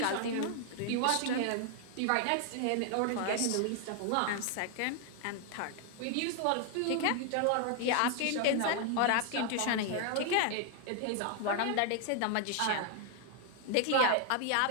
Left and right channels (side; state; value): both; different; correlation 0.00